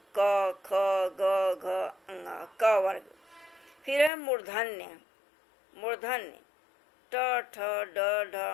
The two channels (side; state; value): right; drops out; at 4.1 s